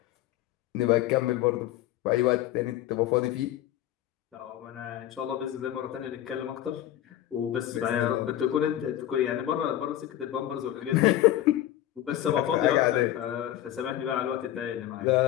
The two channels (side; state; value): right; quieter; 12.8 dB